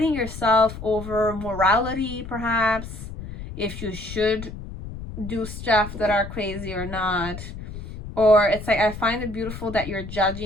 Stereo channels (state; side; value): noise; left; rumble, 10 dB below the sound